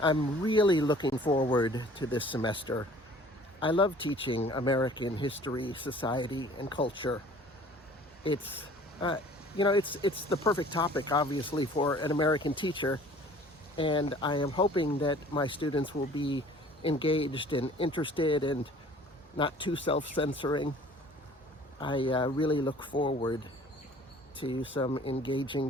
I'm really looking forward to this semester. I love teaching American history, society, and culture. It's the perfect topic, obviously, for an American teacher, and I am hoping that my students will be engaged and interested and not too self-censoring. I really look forward to some engaging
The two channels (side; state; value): both; normal; correlation 0.51